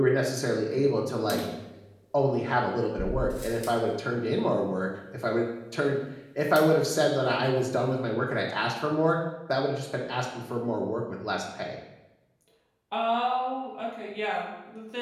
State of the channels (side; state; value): both; identical; correlation 1.00